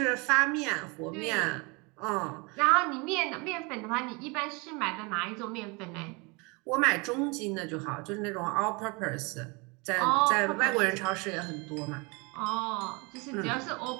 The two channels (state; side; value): quieter; left; 28.9 dB